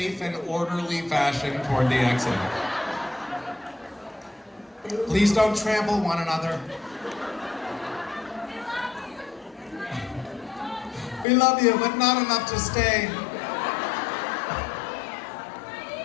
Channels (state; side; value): drops out; right; at 11.2 s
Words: and orderly fashion toward the exit. Please don't trample one another. We love you, but not enough to stay.